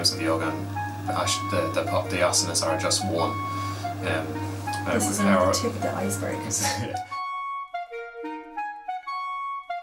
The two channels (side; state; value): both; identical; correlation 1.00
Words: of yoga, and the asanas are just one. This is only the tip of the iceberg.